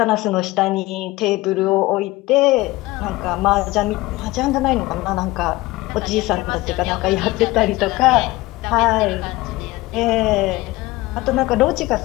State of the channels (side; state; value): right; quieter; 19.4 dB